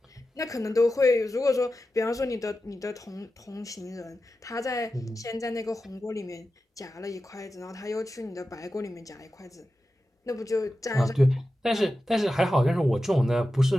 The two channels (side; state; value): both; normal; correlation 0.92